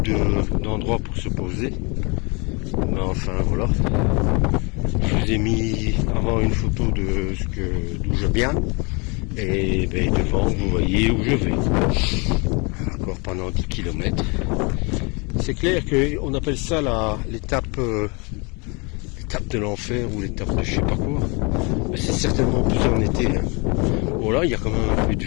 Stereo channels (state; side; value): quieter; right; 30.2 dB